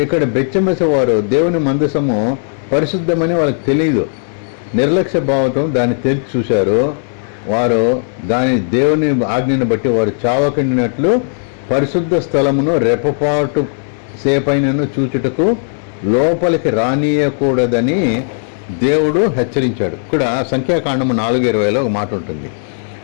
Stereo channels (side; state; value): right; silent; digital silence